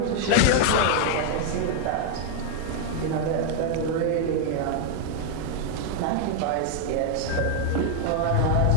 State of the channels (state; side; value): different; both; correlation 0.00